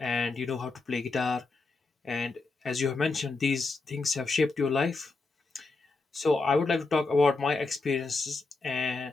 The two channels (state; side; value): quieter; right; 3.7 dB